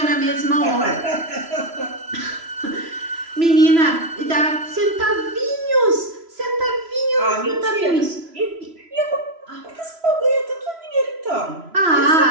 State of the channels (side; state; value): left; late; 3.0 ms